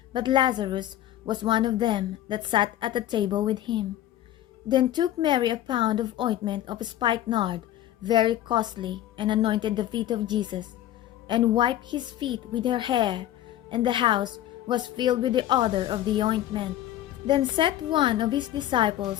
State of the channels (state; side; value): quieter; right; 12.9 dB